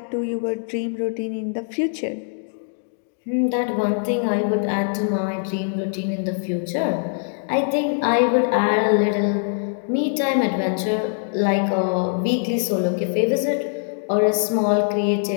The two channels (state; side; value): silent; right; digital silence